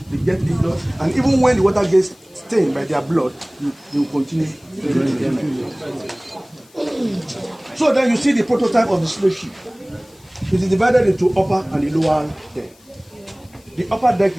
get injured. And even when the water gets stained by their blood, they will continue to drink. So then you see the prototype of the slave ship. It is divided into upper and the lower deck. The upper deck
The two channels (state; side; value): noise; left; hiss, 29 dB below the sound